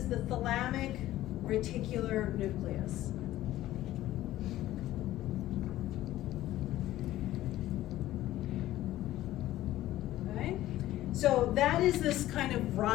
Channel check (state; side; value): quieter; right; 14.8 dB